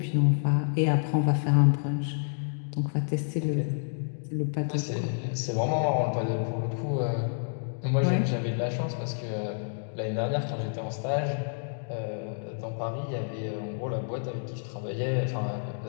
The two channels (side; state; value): right; silent; digital silence